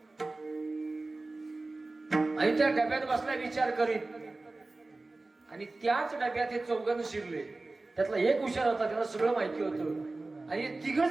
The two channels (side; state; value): left; quieter; 3.2 dB